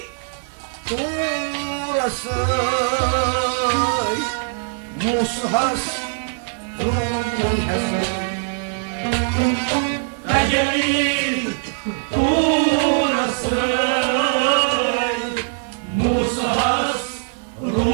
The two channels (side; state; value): left; silent; digital silence